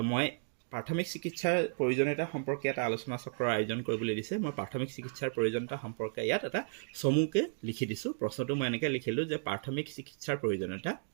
মই প্ৰাথমিক চিকিৎসাৰ প্ৰয়োজনীয়তা সম্পৰ্কে এটা আলোচনা চক্ৰৰ আয়োজন কৰিবলৈ দিছে। মই প্ৰাথমিক চিকিৎসাৰ প্ৰয়োজনীয়তা সম্পৰ্কে ইয়াত এটা চমুকৈ লিখি দিছোঁ। প্ৰশ্নটো মই এনেকৈ লিখিলোঁ যে প্ৰাথমিক চিকিৎসাৰ প্ৰয়োজনীয়তা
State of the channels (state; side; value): silent; left; digital silence